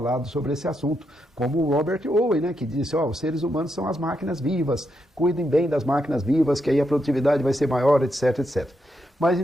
sobre esse assunto, como o Robert Owen, que disse, os seres humanos são as máquinas vivas, cuidem bem das máquinas vivas, que aí a produtividade vai ser maior, etc, etc. Mas,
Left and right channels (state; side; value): normal; both; correlation 0.82